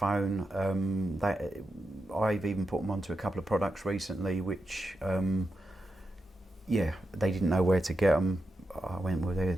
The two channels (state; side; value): normal; both; correlation 0.88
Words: I've even put them onto a couple of products recently, which, they didn't know where to get them. I went, well,